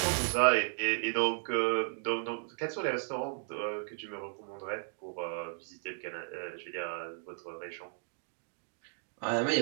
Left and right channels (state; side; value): silent; left; 55 dB below the other